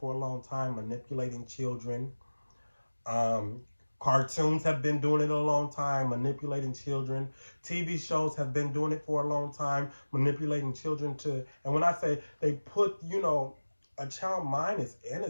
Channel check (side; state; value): both; inverted; correlation -1.00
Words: a long time, manipulating children. um Cartoons have been doing it a long time, manipulating children. TV shows have been doing it for a long time, manipulating children to, and when I say they put, a child mind is